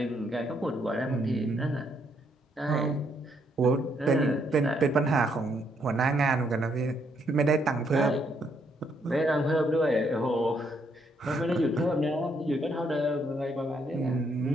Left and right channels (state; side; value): normal; both; correlation 0.73